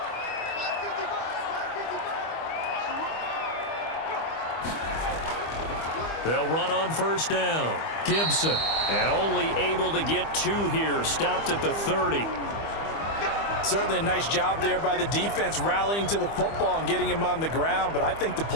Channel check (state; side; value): late; right; 25 ms